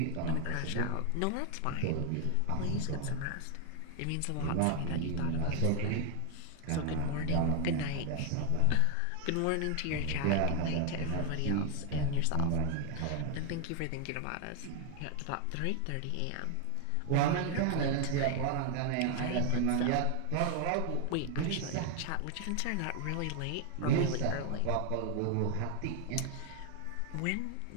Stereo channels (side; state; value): both; different; correlation 0.00